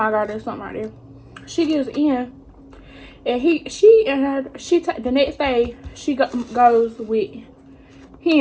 God, there's something right there. She gives in, and the next day she goes with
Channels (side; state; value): both; identical; correlation 1.00